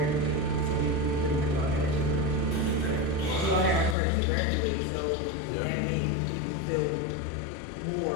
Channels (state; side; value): drops out; right; at 4.0 s